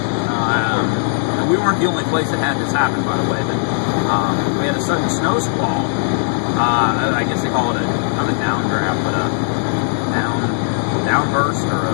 We weren't the only place that had this happen, by the way, but we had a sudden snow squall. I guess they call it not a downdraft, but a downburst, or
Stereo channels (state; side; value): silent; right; digital silence